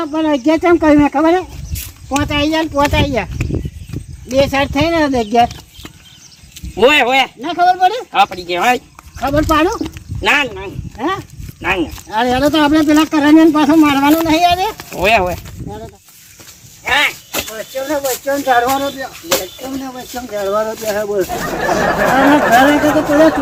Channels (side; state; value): both; identical; correlation 1.00